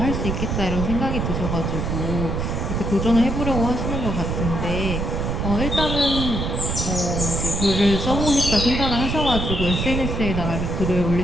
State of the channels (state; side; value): noise; right; rumble, 1 dB below the sound